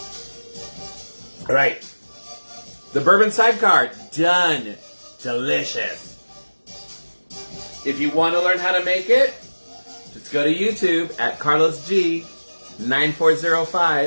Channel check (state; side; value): inverted; both; correlation -1.00